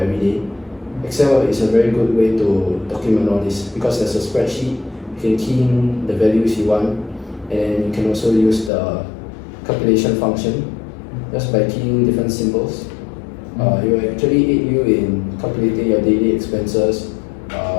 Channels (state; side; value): drops out; right; at 8.7 s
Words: day, Excel is a very good way to document all this because there's a spreadsheet, you can key in the values you want, and you can also use the calculation function just by keying different symbols. It will actually aid you in calculating your daily expenses